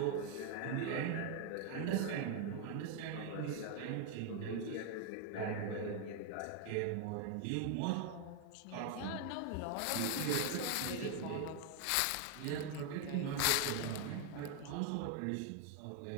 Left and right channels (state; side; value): different; both; correlation 0.00